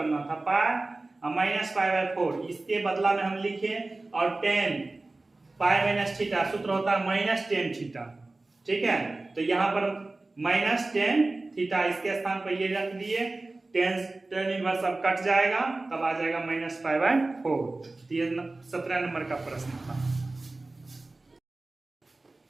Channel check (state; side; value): quieter; left; 3.1 dB